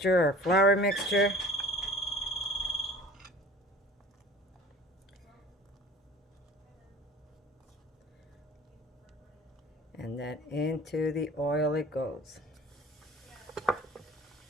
our flour mixture. And then into the oil it goes.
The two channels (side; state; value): both; normal; correlation 0.45